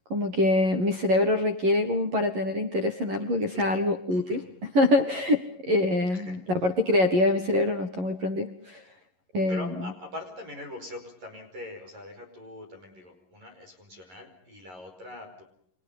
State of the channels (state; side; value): late; left; 11 ms